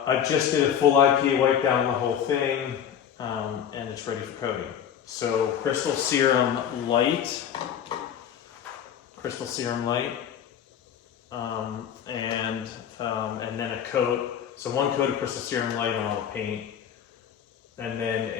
just did a full IPA wipe down on the whole thing, and it's ready for coating. So Crystal Serum Light, and then a coat. So one coat of Crystal Serum Light on all the paint, and then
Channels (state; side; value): quieter; right; 9.0 dB